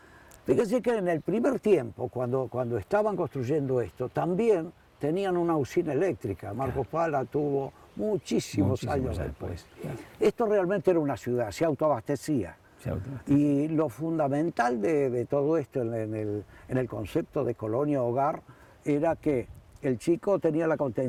fíjense que en el primer tiempo, cuando estaban construyendo esto, también tenían una usina eléctrica. Marcos Paz la tuvo muchísimos años después. Claro. Esto realmente era una ciudad, se autoabastecía. Y lo fundamental de todo esto en el concepto de colonia hogar era que el chico tenía la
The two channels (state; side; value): identical; both; correlation 1.00